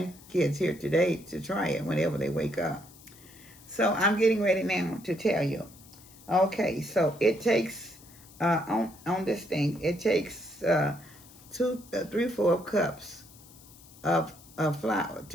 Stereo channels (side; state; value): left; noise; hiss, 22 dB below the sound